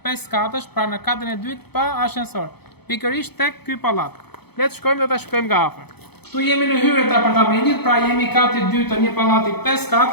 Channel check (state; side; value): late; right; 0.98 ms